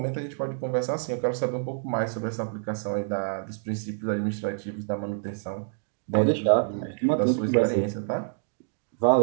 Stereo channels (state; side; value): silent; left; digital silence